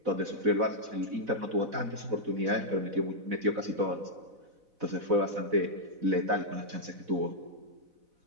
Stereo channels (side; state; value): left; late; 4.0 ms